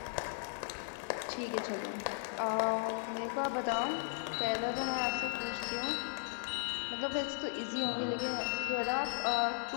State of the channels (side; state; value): right; silent; digital silence